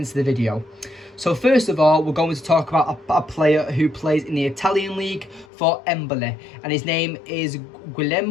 the video. So first of all, we're going to talk about a player who plays in the Italian league for Empoli, and his name is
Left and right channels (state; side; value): drops out; right; at 5.5 s